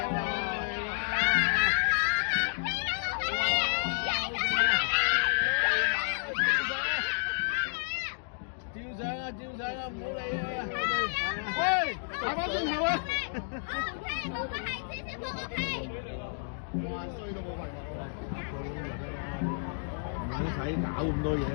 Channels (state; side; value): silent; right; digital silence